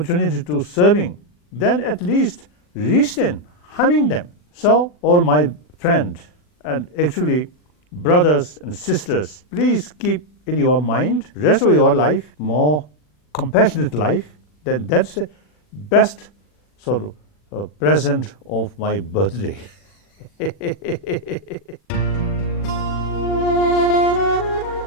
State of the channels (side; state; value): right; late; 40 ms